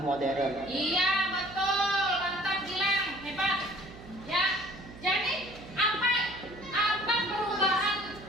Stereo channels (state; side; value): noise; right; hum, 17 dB below the sound